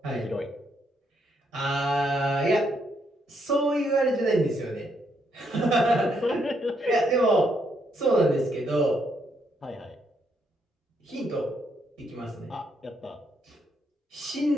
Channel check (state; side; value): normal; both; correlation 0.75